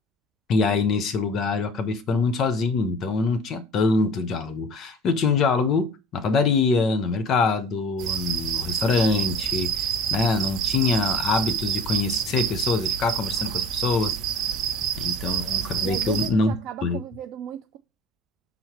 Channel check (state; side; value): normal; both; correlation 0.43